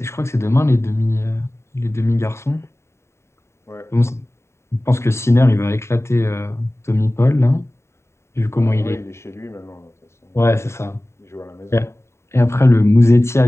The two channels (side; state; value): right; late; 0.13 ms